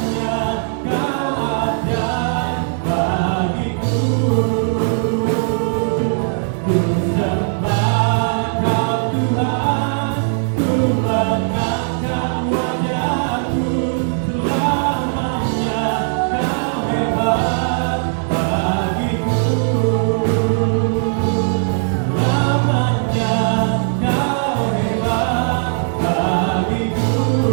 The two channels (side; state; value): left; silent; 67 dB below the other